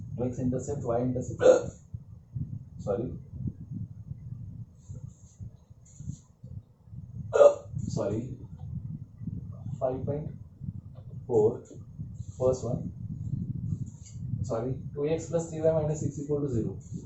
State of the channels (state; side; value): identical; both; correlation 1.00